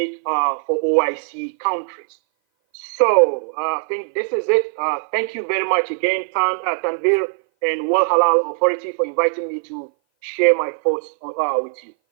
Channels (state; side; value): silent; left; 58 dB below the other